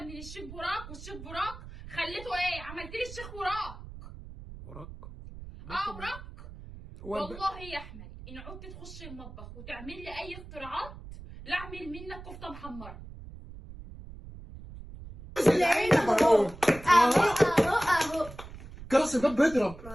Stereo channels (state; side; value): noise; right; rumble, 14 dB below the sound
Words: من الشيخ براك، والشيخ براك خليته ايه؟ عملت لي الشيخ براك. وراك. والله يا احمد ان عدت تخش المطبخ وتعمل لي اي اختراعات لا اعمل منك كفته محمره. اهو كراسي ده بيضرب.